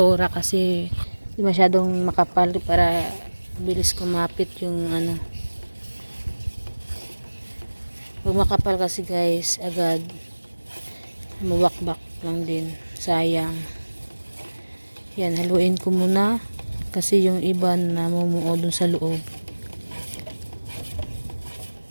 kasi di masyadong makapal para bilis kumapit yung Pag makapal kasi guys, agad mawakbak lang din. Sayang. Yan, haluin ko muna kasi yung iba na mumuo dun sa loob.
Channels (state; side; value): inverted; both; correlation -1.00